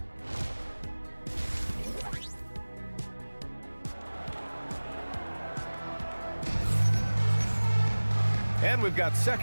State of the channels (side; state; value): both; inverted; correlation -1.00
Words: And we've got